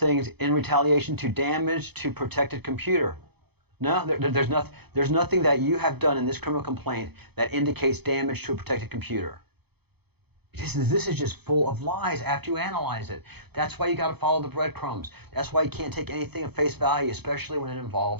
in retaliation to damage to protected computer. No, there's nothing that you have done in this criminal complaint that indicates damage to a protected computer. This is just full of lies after you analyze it. That's why you got to follow the breadcrumbs. That's why you can't take anything at face value, especially when it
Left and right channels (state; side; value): late; left; 0.98 ms